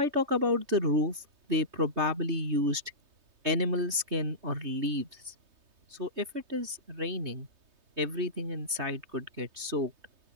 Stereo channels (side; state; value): left; late; 3.2 ms